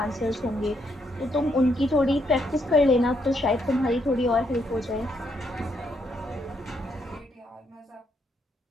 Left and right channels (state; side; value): normal; both; correlation 0.75